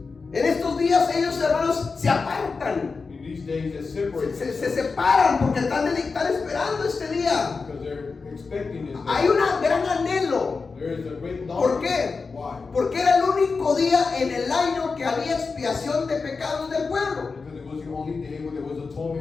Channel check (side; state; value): right; quieter; 4.5 dB